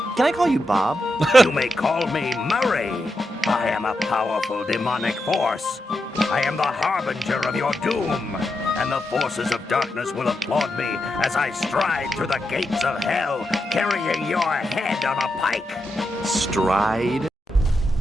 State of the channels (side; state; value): both; normal; correlation 0.86